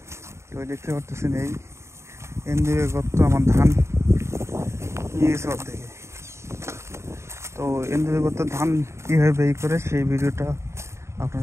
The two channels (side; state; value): left; late; 0.13 ms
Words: তো দেখতে পারতেছেন এই এন্দুরের গর্ত আমার ধান নিয়ে গেছে অর্ধেকে। তো এন্দুরের গর্ত ধান কীভাবে বের করে সেই ভিডিওটা